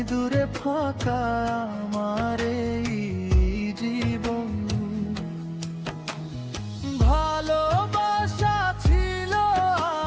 দূরে ফাঁকা আমার এই জীবন। ভালোবাসা ছিল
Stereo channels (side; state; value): both; identical; correlation 1.00